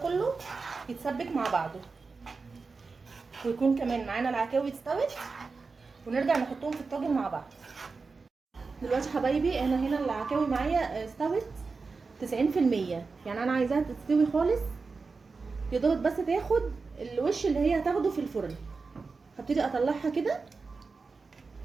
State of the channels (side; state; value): left; quieter; 4.4 dB